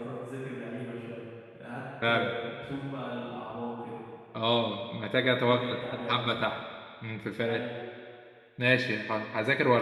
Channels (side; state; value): both; identical; correlation 1.00